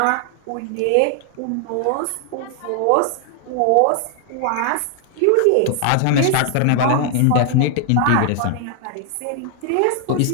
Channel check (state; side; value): different; both; correlation 0.00